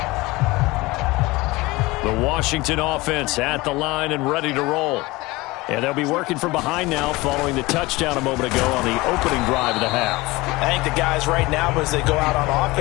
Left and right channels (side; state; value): right; quieter; 21.6 dB